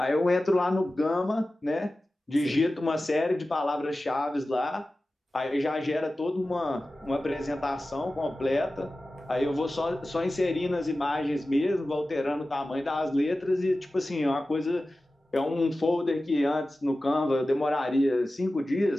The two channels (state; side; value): normal; both; correlation 0.95